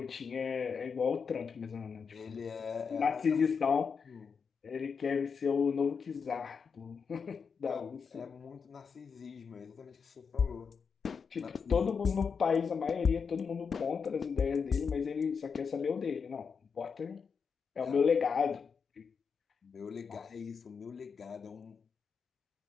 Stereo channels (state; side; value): quieter; right; 5.9 dB